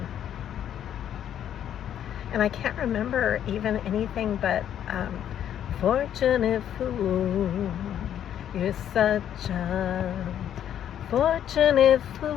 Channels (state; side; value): quieter; right; 10.1 dB